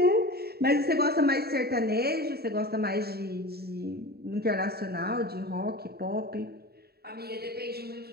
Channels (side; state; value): left; late; 0.46 ms